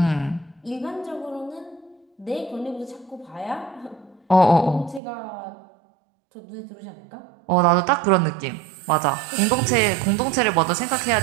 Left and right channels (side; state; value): left; drops out; at 5.0 s